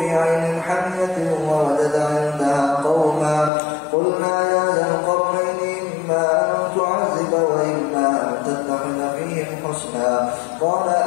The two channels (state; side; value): drops out; right; at 3.5 s